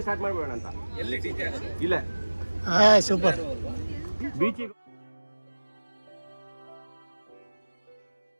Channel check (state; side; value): inverted; both; correlation -1.00